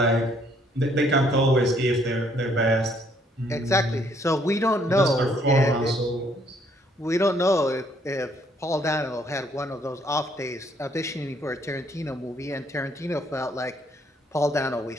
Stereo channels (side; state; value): both; normal; correlation 0.66